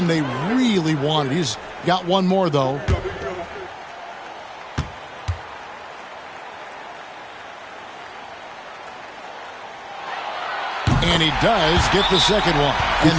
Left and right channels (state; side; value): identical; both; correlation 1.00